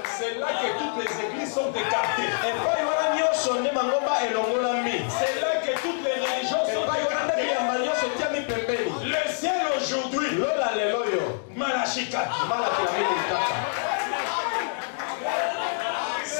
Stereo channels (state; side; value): silent; right; digital silence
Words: C'est là que toutes les églises sont écartées. C'est là que toutes les religions sont écartées. Le ciel aujourd'hui, Malachi 4.